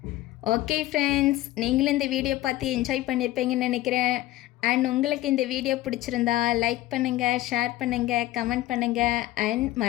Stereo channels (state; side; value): quieter; right; 15.9 dB